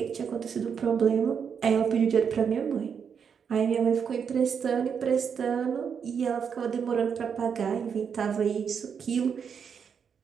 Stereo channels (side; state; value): left; quieter; 6.9 dB